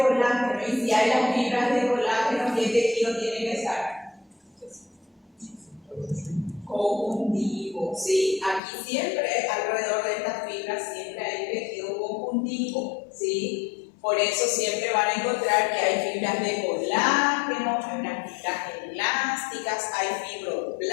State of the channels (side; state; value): right; drops out; at 8.6 s